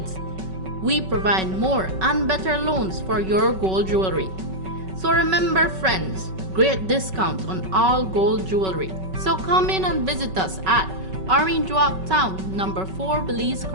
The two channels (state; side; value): late; left; 5.3 ms